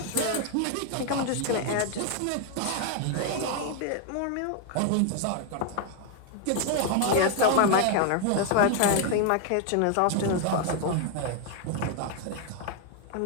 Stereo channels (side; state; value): both; different; correlation 0.01